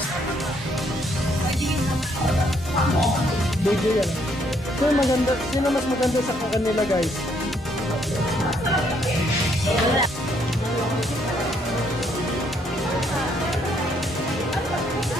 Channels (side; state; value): both; normal; correlation 0.70